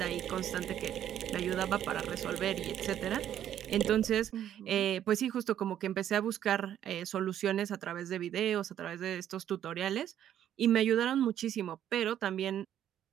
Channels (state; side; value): quieter; left; 10.7 dB